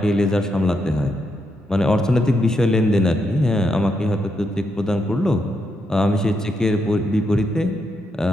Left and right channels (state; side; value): normal; both; correlation 0.81